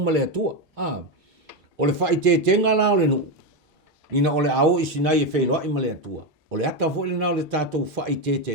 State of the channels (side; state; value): both; normal; correlation 0.10